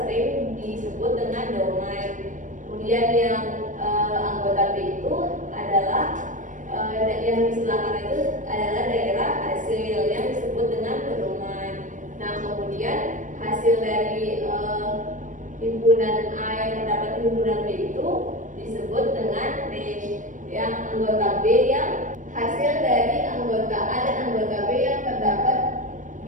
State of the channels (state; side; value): late; left; 0.37 ms